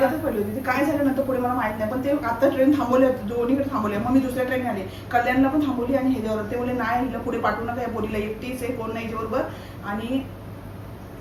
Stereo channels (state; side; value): identical; both; correlation 1.00